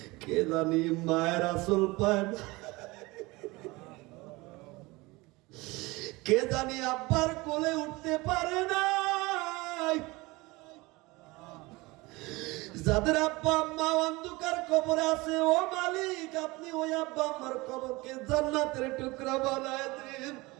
কে জানি মায়ের আসল পায় না, কে জানি আব্বার কোলে উঠতে পারে না। যাদের আব্বা আম্মা অন্ধকার কবরে আছে, ও মালিক, আপনি ওই আব্বা আম্মার কবরকে জান্নাতের টুকরা বানায় দিন।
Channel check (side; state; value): left; quieter; 22.7 dB